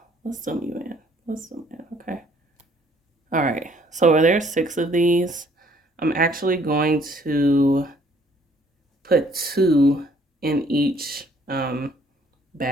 let's zoom you in. Let's zoom in, okay. All right, so where there are 6 of these, I'm actually going to put 2 in each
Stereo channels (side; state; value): both; normal; correlation 0.61